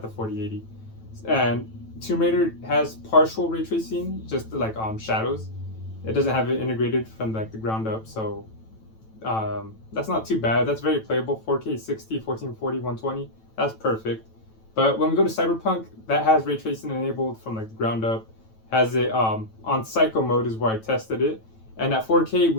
the 4080. And Tomb Raider has partial ray tracing, just like shadows. It doesn't have it integrated from like the ground up, so that's not too bad. That's very playable. 4K 60, 1440, 120. That's perfect. But when we go to Cyberpunk, that has ray tracing enabled from like the ground up. Has it on Psycho mode is where I tested it. And at 4K,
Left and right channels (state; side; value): late; right; 9.1 ms